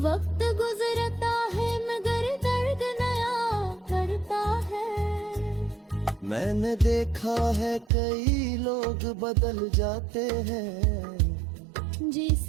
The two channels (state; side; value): drops out; left; at 7.9 s